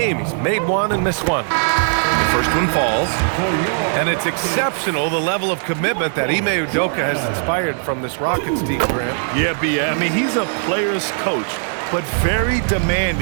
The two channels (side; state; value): left; silent; digital silence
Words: He's made 1 and missed 1. The first one falls. And it's exceptional, the level of commitment that Ime Udoka has inspired from this Rockets team, Grant. Yeah, B.A. I mean, he's a player's coach, but very